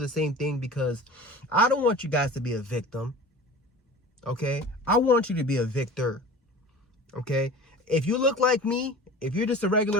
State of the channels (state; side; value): normal; both; correlation 0.39